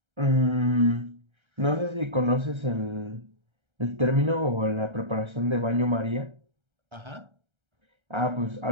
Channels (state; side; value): late; left; 1.3 ms